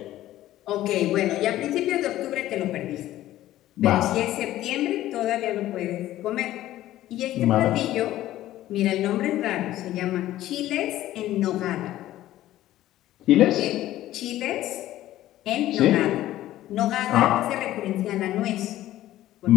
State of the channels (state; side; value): quieter; right; 14.3 dB